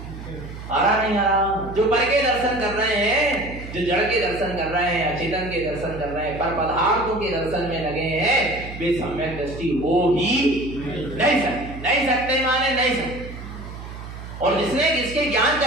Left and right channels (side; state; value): right; noise; hum, 11 dB below the sound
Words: आ रहा नहीं आ रहा। जो पर के दर्शन कर रहे हैं, जो जड़ के दर्शन कर रहे हैं, अचेतन के दर्शन कर रहे हैं, पर पदार्थों के दर्शन में लगे हैं, वे सम्यक दृष्टि हो ही नहीं सकते माने नहीं सकते। और जिसके ज्ञान